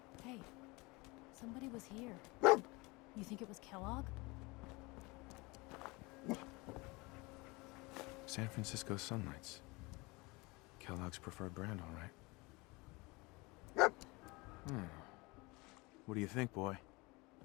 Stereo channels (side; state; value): right; quieter; 25.0 dB